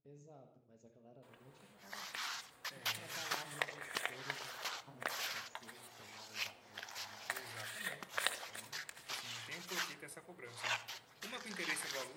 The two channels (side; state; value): both; identical; correlation 1.00